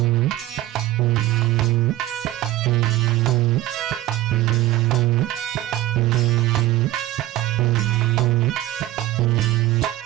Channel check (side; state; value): left; quieter; 15.5 dB